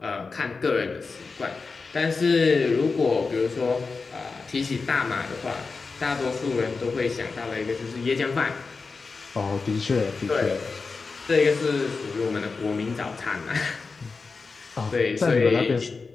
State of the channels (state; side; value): quieter; right; 4.4 dB